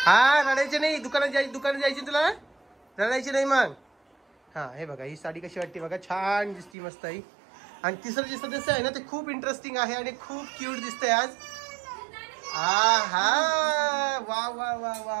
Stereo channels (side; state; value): left; drops out; at 6.7 s